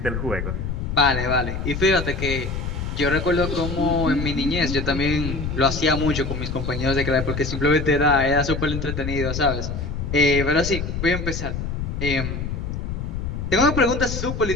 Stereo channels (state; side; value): noise; left; rumble, 4 dB below the sound